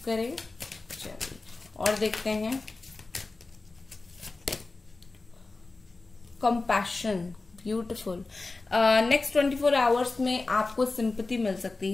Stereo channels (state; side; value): quieter; right; 3.5 dB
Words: करें। चलिए और देखते हैं कंपैशन, ब्यूटीफुल। नेक्स्ट 24 आवर्स में आपको सिंपैथी मिल सकती